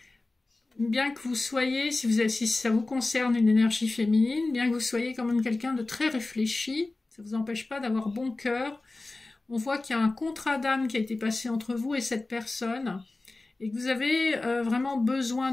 Bien que vous soyez, si ça vous concerne une énergie féminine, bien que vous soyez quand même quelqu'un de très réfléchi, ça ne vous empêche pas d'avoir bon cœur. On voit qu'il y a un contrat d'âme qui a été passé entre vous et cette personne et que vous avez vraiment besoin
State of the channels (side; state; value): right; quieter; 3.2 dB